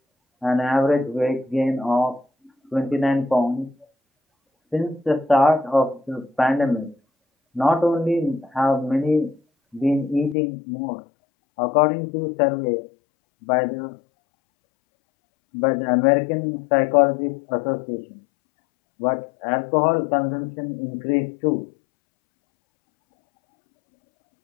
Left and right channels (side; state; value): right; drops out; at 10.4 s